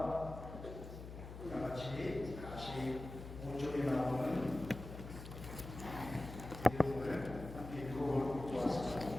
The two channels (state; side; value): noise; left; hum, 10 dB below the sound